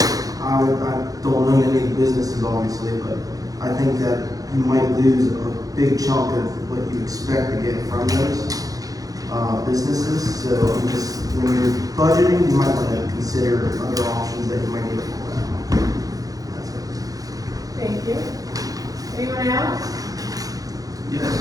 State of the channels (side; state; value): left; late; 0.17 ms